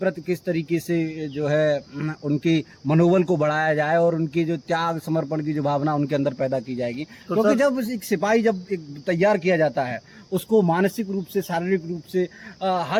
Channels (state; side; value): identical; both; correlation 1.00